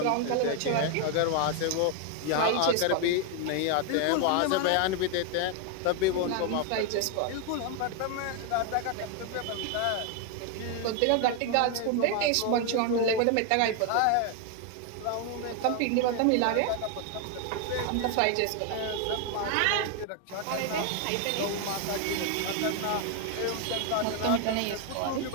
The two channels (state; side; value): different; both; correlation 0.01